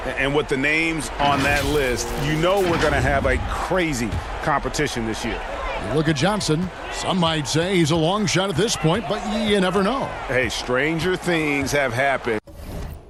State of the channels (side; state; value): both; identical; correlation 1.00